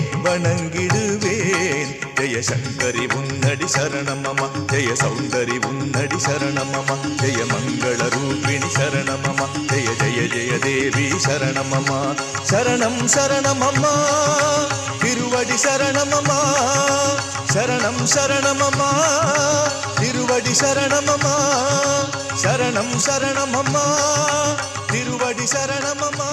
வணங்கிடுவேன் ஜெய சங்கரி உன்னடி சரணமம ஜெய சௌந்தரி உன்னடி சரணமம ஜெய மங்கள ரூபிணி சரணமம ஜெய ஜெய ஜெய தேவி சரணமம சரணம் சரணமம்மா திருவடி சரணமம்மா சரணம் சரணமம்மா திருவடி சரணமம்மா சரணம் சரணமம்மா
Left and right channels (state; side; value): identical; both; correlation 1.00